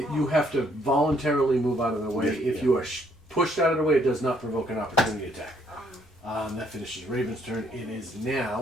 have to voluntarily move out of the way. Yeah. If you are pushed out of the way, it does not provoke an opportunity attack. That finishes Raven's turn. It is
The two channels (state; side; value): normal; both; correlation 0.68